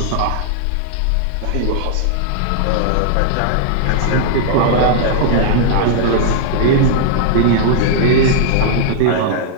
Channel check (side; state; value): both; different; correlation -0.01